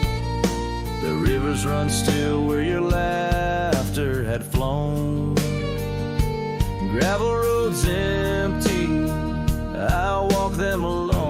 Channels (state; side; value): identical; both; correlation 1.00